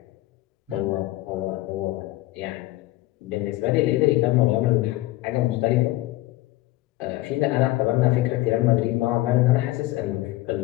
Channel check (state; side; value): quieter; right; 17.8 dB